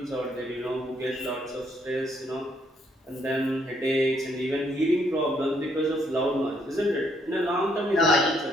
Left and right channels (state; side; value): normal; both; correlation 0.71